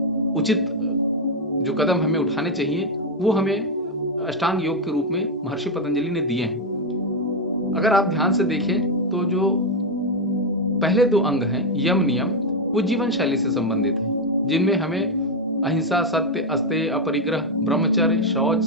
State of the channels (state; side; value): normal; both; correlation 0.04